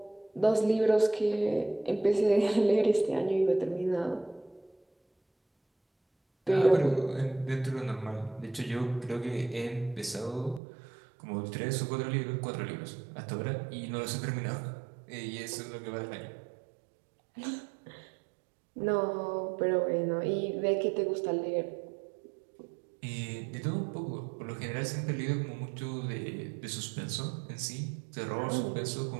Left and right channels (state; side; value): drops out; left; at 10.6 s